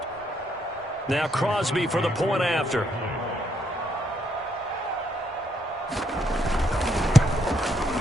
Now Crosby for the point after.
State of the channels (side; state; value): both; normal; correlation 0.74